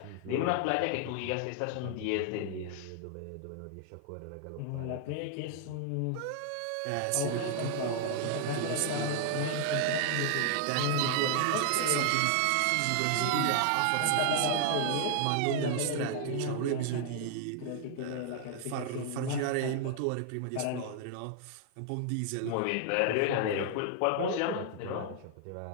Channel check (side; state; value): both; different; correlation 0.00